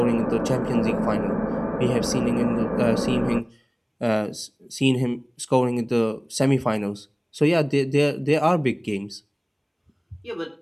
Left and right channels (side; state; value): both; identical; correlation 1.00